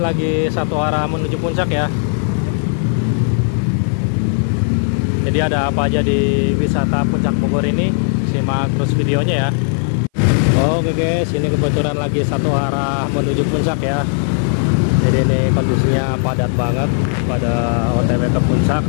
satu arah menuju puncak ya. Jadi ada apa aja di wisata puncak Bogor ini, simak terus videonya ya. Oke guys, ini kebetulan lagi satu arah menuju puncak ya. Jadi ini kondisinya padat banget pada OTW ke puncak.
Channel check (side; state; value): right; silent; 57 dB below the other